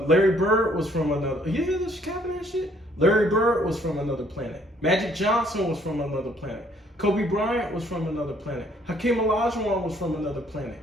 Larry Bird was from another. You hear this capping that shit? Larry Bird was from another planet. Magic Johnson was from another planet. Kobe Bryant was from another planet. Hakeem Olajuwon was from another planet.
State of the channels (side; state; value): both; normal; correlation 0.64